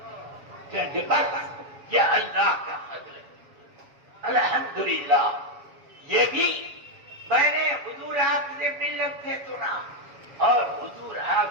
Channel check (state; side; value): late; left; 7.2 ms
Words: بس یہ اللہ کا فضل ہے، الحمدللہ۔ یہ بھی میں نے حضور حافظ ملت سے سنا، اور حضور